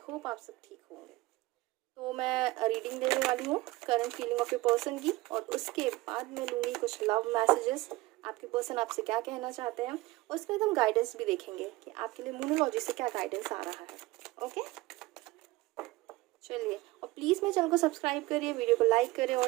होप आप सब ठीक होंगे। तो मैं रीडिंग देने वाली हूँ current feeling of your person की, और उसके बाद मैं लूँगी कुछ लव मैसेजेस, आपके पर्सन आपसे क्या कहना चाहते हैं। और उसके बाद हम गाइडेंस भी देखेंगे कि आपके लिए न्यूमरोलॉजी से क्या गाइडेंस आ रहा है। ओके, चलिए। और प्लीज़ मेरे चैनल को सब्सक्राइब करिए, वीडियो को लाइक करें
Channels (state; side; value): quieter; left; 20.2 dB